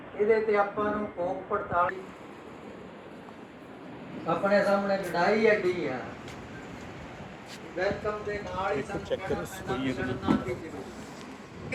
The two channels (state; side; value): identical; both; correlation 1.00